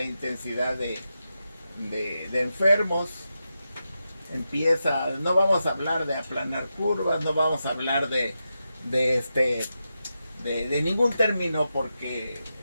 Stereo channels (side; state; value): both; inverted; correlation -0.89